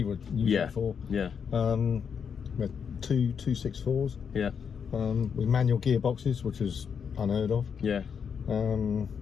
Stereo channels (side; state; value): right; quieter; 6.9 dB